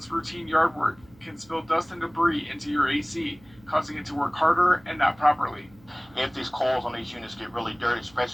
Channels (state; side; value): noise; right; hum, 27 dB below the sound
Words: routine yard work can spill dust and debris into your AC, causing it to work harder and not properly. If these coils on these units get really dirty,